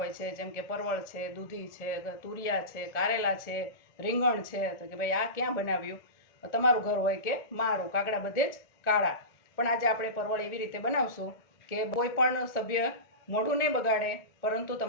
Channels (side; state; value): right; late; 1.8 ms